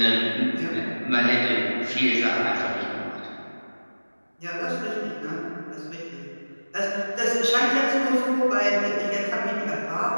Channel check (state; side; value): inverted; both; correlation -1.00